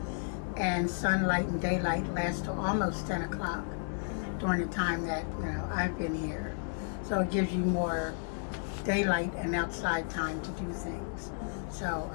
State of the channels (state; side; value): silent; right; digital silence